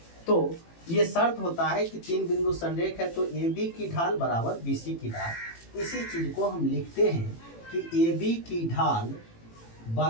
तो ये शर्त होता है कि तीन बिंदु संरेख है तो AB की ढाल बराबर BC की ढाल। इसी चीज़ को हम लिखते हैं कि AB की ढाल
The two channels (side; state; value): right; late; 18 ms